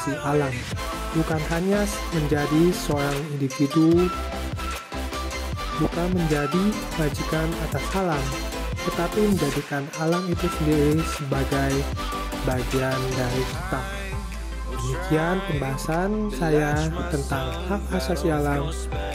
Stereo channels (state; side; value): identical; both; correlation 1.00